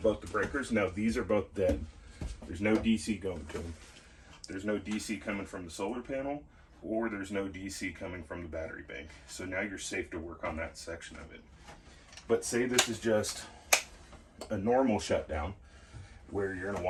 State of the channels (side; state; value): both; identical; correlation 1.00